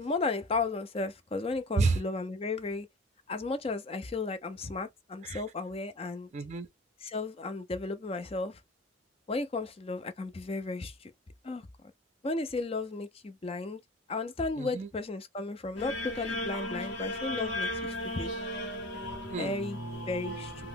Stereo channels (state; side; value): normal; both; correlation 0.39